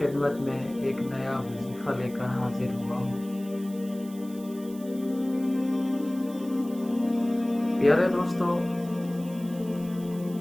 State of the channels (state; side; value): noise; right; hiss, 21 dB below the sound